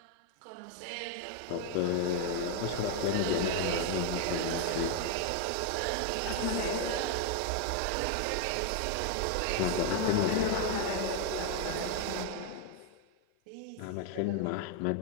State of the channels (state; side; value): different; both; correlation 0.01